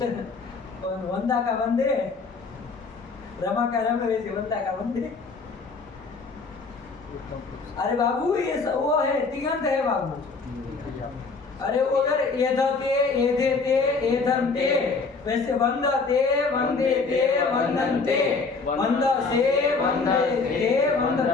का वंदे, रमा का रम, वैसे वंदा का वंदे। अरे बाबू ये वो है, तिगंत है बाबू। अरे वो अगर एधते एधेते एधन्ते, वैसे वंदते वंदेते वंदन्ते, वंदसे वंदेते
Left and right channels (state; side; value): quieter; right; 4.4 dB